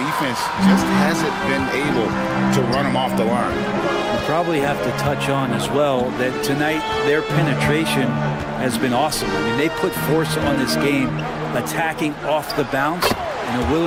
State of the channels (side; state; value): both; identical; correlation 1.00